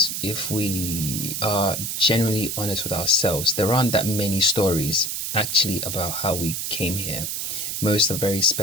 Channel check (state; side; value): noise; right; hiss, 3 dB below the sound